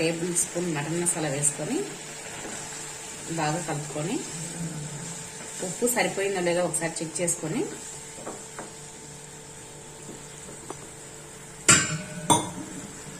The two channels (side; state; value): both; identical; correlation 1.00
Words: స్పూన్ మటన్ మసాలా వేసుకొని బాగా కలుపుకొని ఉప్పు సరిపోయిందో లేదో ఒకసారి చెక్ చేసుకొని